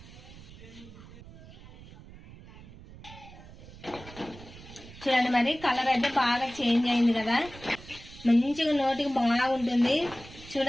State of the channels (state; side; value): noise; right; rumble, 18 dB below the sound